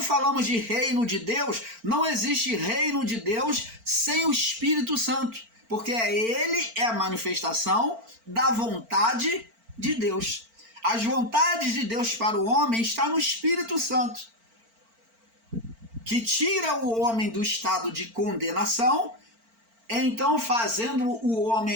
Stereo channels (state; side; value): late; left; 4.4 ms